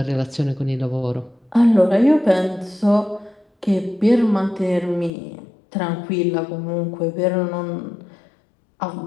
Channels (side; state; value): right; drops out; at 5.1 s